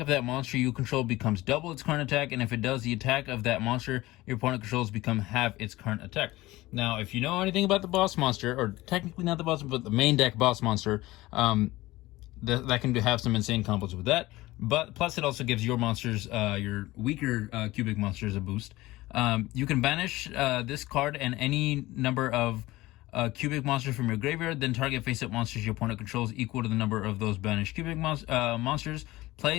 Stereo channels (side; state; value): right; quieter; 18.6 dB